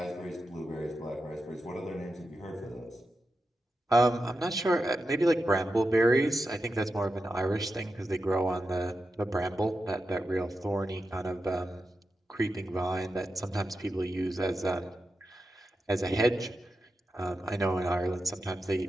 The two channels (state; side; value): normal; both; correlation 0.90